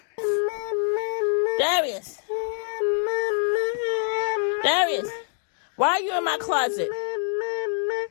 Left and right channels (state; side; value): silent; right; digital silence